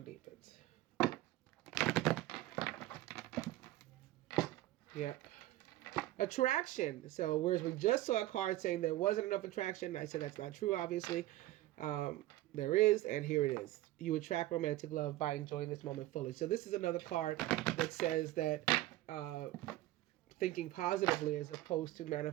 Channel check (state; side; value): quieter; left; 16.2 dB